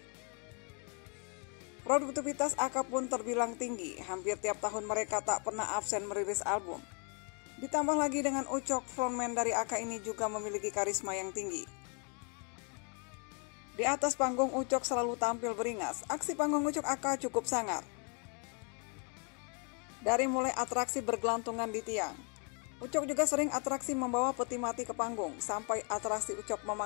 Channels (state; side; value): quieter; right; 38.0 dB